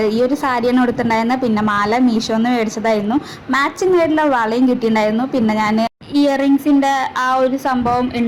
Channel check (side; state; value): both; identical; correlation 1.00